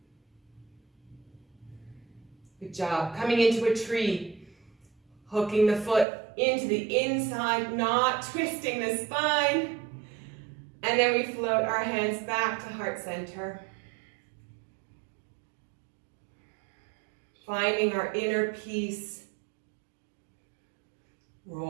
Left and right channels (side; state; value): left; drops out; at 6.1 s